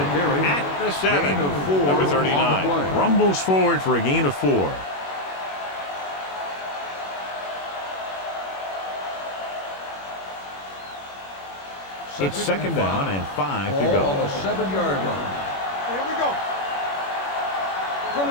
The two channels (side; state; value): right; late; 21 ms